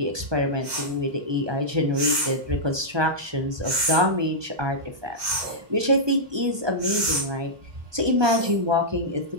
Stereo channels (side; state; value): left; late; 1.2 ms